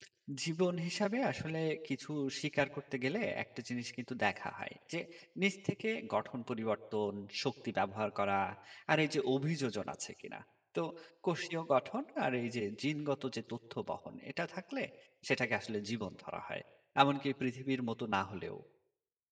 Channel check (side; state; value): both; identical; correlation 1.00